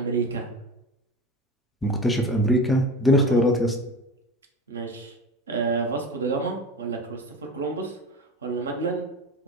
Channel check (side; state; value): both; normal; correlation 0.31